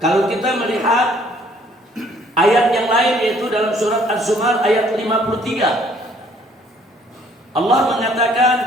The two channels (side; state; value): both; normal; correlation 0.61